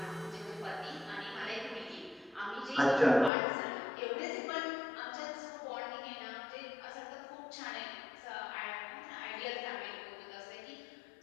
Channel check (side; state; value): right; drops out; at 3.3 s